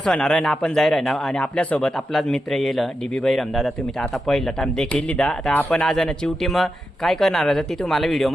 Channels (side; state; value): both; normal; correlation 0.88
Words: होणार आहे ना, आपण जाय ना आणि आपल्यासोबत आपलाच मित्र येईल डीबी बैरम दादा। तुम्ही तर आता पहिला टाइम देखील लिदा, आता आपण आज ना चिवटी मग काय करणार आहे ती तुम्हाला